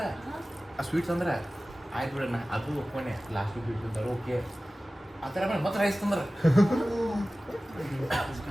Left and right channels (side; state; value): both; normal; correlation 0.97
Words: ಆ ಸ್ವೀಟ್ಸ್ ಅಂದ್ರೆ ಆಯ್ತು ಬಿಡೋಣ ಅದು ಒಪ್ಕೊಂಡೆ ಲಾಸ್ಟ್ ಸ್ವೀಟ್ ತಿಂತಾರೆ ಓಕೆ ಆ ಥರ ಆಮೇಲೆ ಮತ್ತೆ ರೈಸ್ ತಂದ್ರೆ